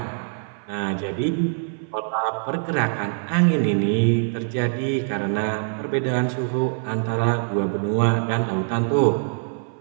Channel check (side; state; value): left; silent; 57 dB below the other